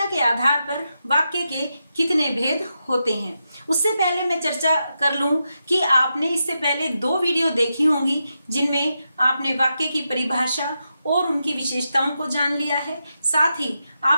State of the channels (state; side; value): inverted; both; correlation -0.86